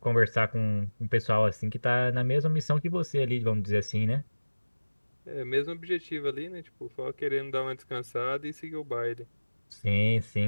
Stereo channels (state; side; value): inverted; both; correlation -1.00